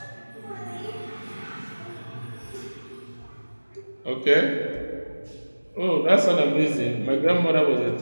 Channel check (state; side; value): inverted; both; correlation -1.00